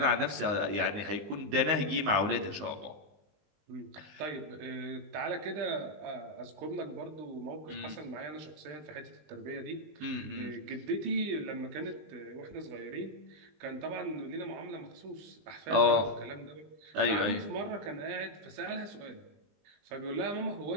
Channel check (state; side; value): late; left; 20 ms